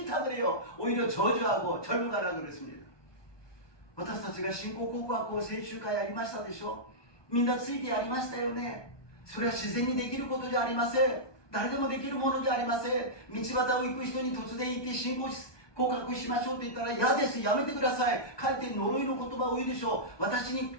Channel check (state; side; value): late; right; 1.2 ms